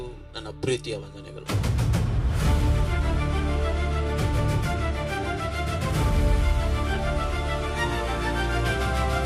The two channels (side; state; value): both; identical; correlation 1.00